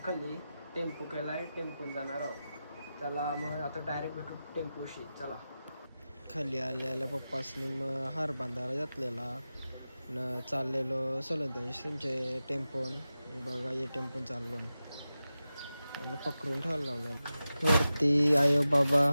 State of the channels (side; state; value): both; inverted; correlation -0.93